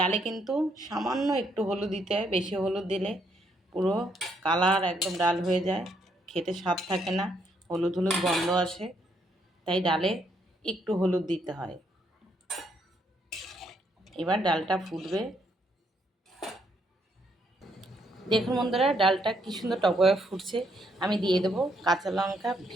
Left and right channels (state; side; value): normal; both; correlation 0.73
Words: কিন্তু সামান্য একটু হলুদ দিতে হয়, বেশি হলুদ দিলে পুরো কালার একদম ডাল হয়ে যায়, খেতে স্বাদ থাকে না, হলুদ হলুদ গন্ধ আসে। তাই ডালে একটু হলুদ দিতে হয়। এবার ডালটা ফুটবে। দেখুন বন্ধুরা, ডালটা কী সুন্দর টকবগে ফুটছে। আমি দিয়ে দেবো কাঁচা লঙ্কা